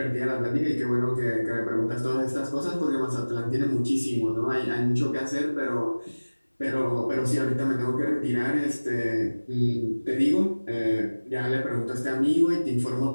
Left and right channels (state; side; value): inverted; both; correlation -1.00